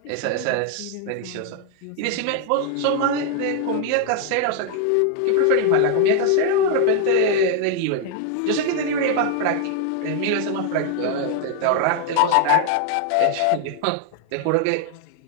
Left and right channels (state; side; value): different; both; correlation 0.00